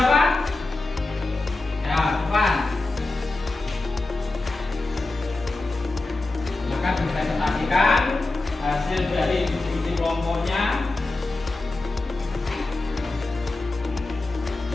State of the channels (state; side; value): quieter; right; 3.1 dB